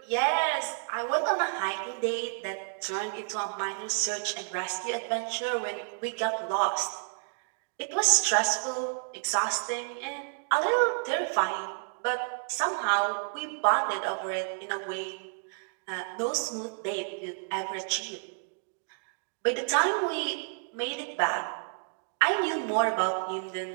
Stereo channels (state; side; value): silent; left; digital silence